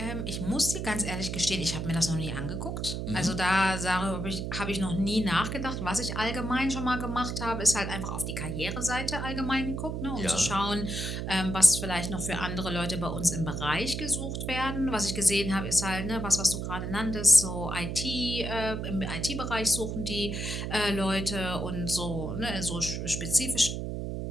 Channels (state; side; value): noise; right; hum, 3 dB below the sound